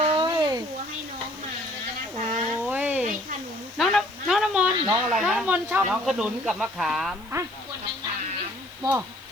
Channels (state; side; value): noise; left; hiss, 26 dB below the sound